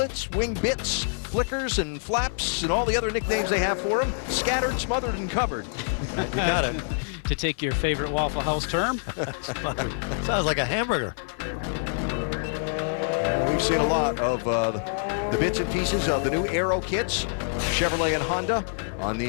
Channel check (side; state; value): right; silent; 57 dB below the other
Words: wing bits, flickers and flaps and all the other nicknames they have for them. Scattered, smothered, and covered. You got it. To take your favorite Waffle House term. Sounds like a hamburger. We've seen a lot of the bits and pieces of the new Aero kits, Chevrolet and Honda, on